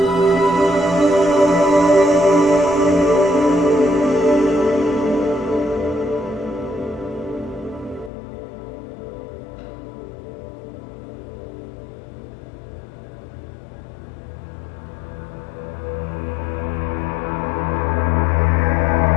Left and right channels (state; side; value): drops out; right; at 8.1 s